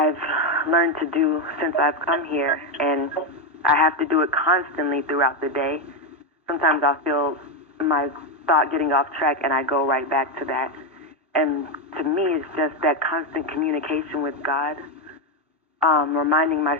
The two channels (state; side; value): normal; both; correlation 0.08